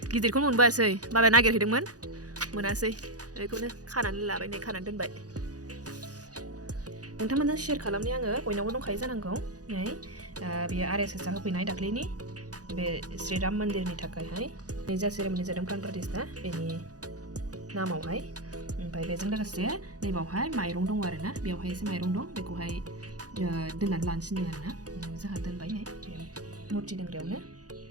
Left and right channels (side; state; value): left; late; 0.67 ms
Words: गिदिरखौनो मोनबोआसै बाबाया नागिरहैदोंमोन मोनासै बेखौनो खानानै लाबाय नै खानानै दोनबाय नोंथांमोनजों शेयार खालामनि आङो बयनावबो दंखायो जानांगौ नै बेयो RSSआ होफैनाय दाख्लैनि बे श्रीराम मन्दिरनि थाखायहाय नै जा सेरेमनि जादों प्राण प्रतिष्ठा बेनि नामावहाय ओमफ्राय बेजों लोगोसे नैबावहाय माइरं दङ आरोना बेवहाय एसे माइरं दं बेखौहाय दोननानै लानोसै आरोना जोंहा दोनबाय नै बे मुर्ति दोनग्रायावनो